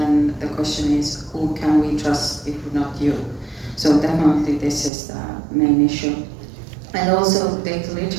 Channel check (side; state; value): left; drops out; at 4.9 s